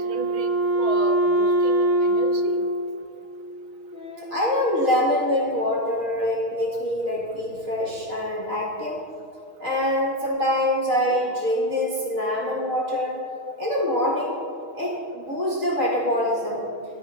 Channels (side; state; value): left; late; 6.3 ms